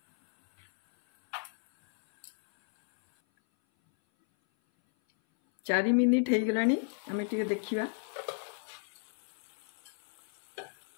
चारि मिनिट हो गलानी। आमे टिके देखिबा।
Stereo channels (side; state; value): right; silent; 56 dB below the other